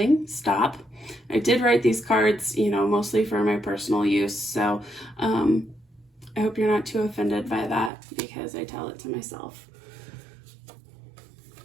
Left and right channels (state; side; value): drops out; left; at 7.9 s